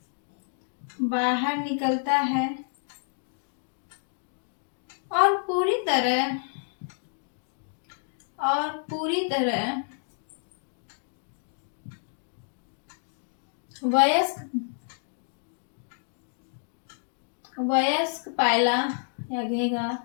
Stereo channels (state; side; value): silent; right; digital silence